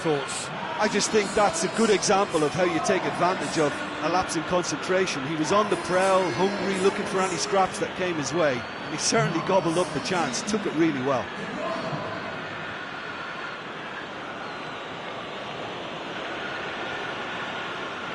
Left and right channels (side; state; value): both; identical; correlation 1.00